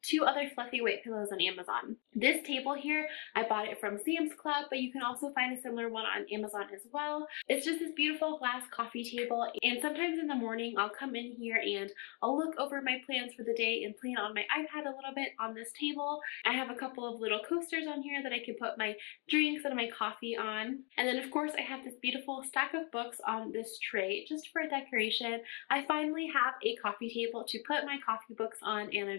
2 other fluffy weight pillows on Amazon. This table here, I bought it from Sam's Club, but you can also find a similar one on Amazon as well. It's just this beautiful glass coffee table, and sometimes in the morning I'll come in here and I'll look over my plans for the day and plan on my iPad a little bit on this table. I have a couple of little coasters on here that I can put my drinks and my coffee on. And then of course I have this beautiful stack of books on this tray just for decoration. I finally have a coffee table to put my coffee books on, and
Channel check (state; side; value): quieter; right; 32.8 dB